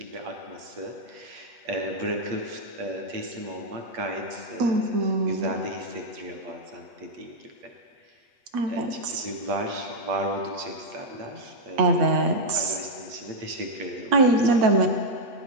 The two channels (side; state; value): left; late; 8.3 ms